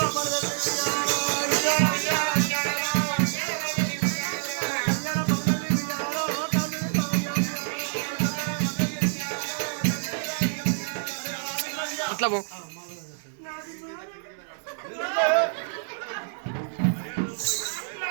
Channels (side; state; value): left; silent; 57 dB below the other